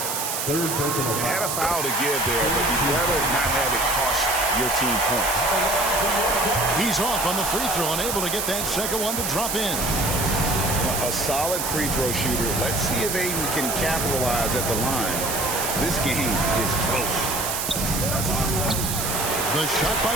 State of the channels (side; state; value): right; noise; hiss, 2 dB below the sound